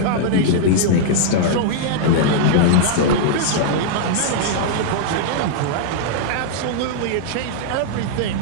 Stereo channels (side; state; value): both; different; correlation -0.01